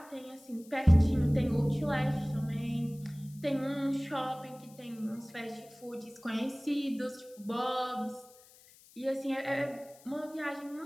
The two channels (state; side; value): noise; left; hiss, 24 dB below the sound